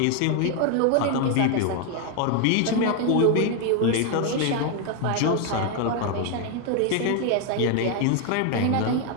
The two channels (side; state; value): both; different; correlation 0.01